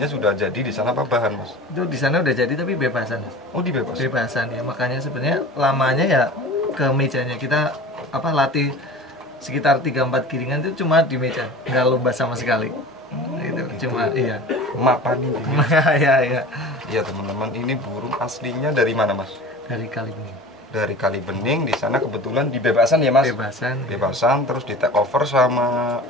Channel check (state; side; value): normal; both; correlation 0.38